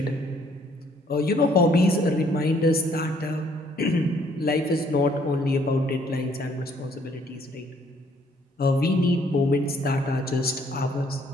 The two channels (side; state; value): both; normal; correlation 0.64